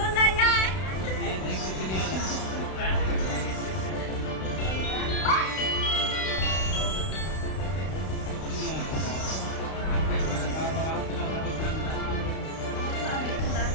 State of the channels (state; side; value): late; right; 32 ms